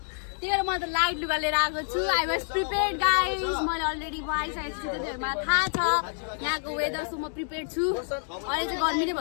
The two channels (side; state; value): right; silent; digital silence